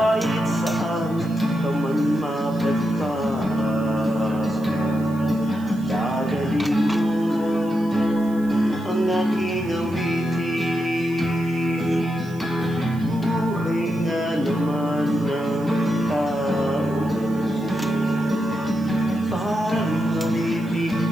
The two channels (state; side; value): noise; right; hiss, 25 dB below the sound